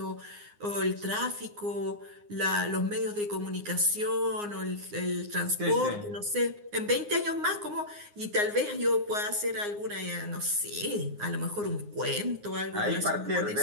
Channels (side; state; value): left; late; 9.7 ms